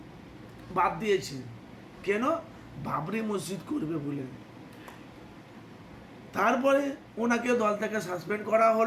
বাদ দিয়েছে। কেন? বাবরি মসজিদ করবে বলে। তারপরে ওনাকে দল থেকে সাসপেন্ড করা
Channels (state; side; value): identical; both; correlation 1.00